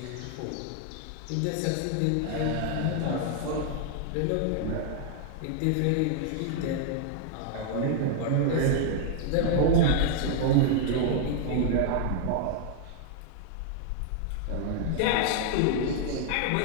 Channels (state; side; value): different; both; correlation 0.00